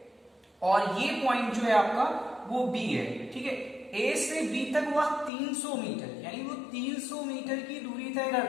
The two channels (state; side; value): drops out; right; at 5.3 s